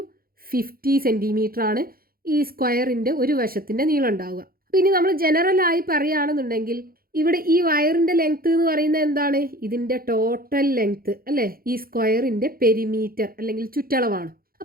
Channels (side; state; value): left; late; 0.43 ms